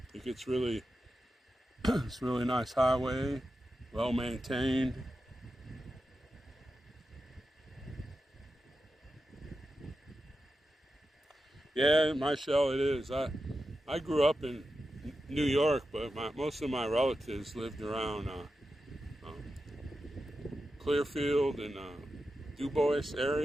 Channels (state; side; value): normal; both; correlation 0.90